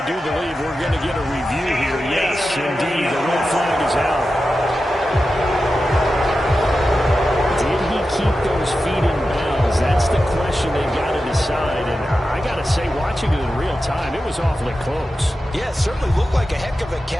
do believe we're going to get a review here. Yes, indeed, the red flag is out. Did he keep those feet in bounds? That's the question they've got to decide. And I got to say, watching it in real time, it was awfully close. Yeah, it certainly looked like a heck of a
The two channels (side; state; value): both; normal; correlation 0.92